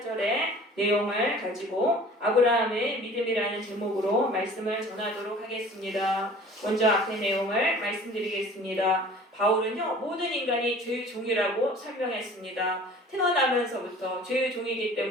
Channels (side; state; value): both; normal; correlation 0.46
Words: 내용을 가지고 아브라함의 믿음이라는 제목으로 말씀을 전하도록 하겠습니다. 먼저 앞의 내용을 말씀드리겠습니다. 바울은요, 모든 인간이 죄의 종이라고 설명했습니다. 태어나면서부터 죄의 종이기